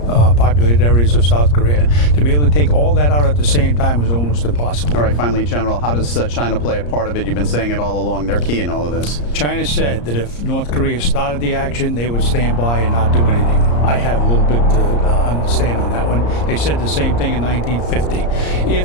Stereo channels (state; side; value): late; right; 34 ms